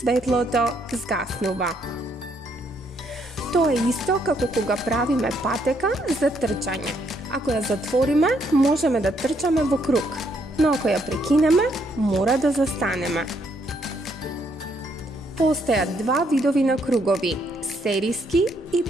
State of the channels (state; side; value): normal; both; correlation 0.72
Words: згаснува. Тоа е исто како кога правиме патека за трчање. Ако ја затвориме, можеме да трчаме во круг, но ако ја прекинеме, мора да застанеме. Постојат 2 видови на кругови – сериски и